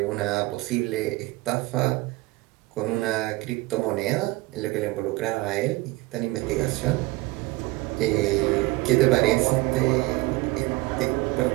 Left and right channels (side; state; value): left; quieter; 21.2 dB